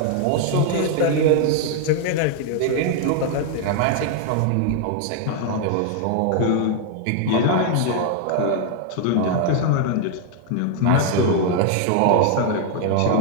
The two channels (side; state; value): both; different; correlation 0.00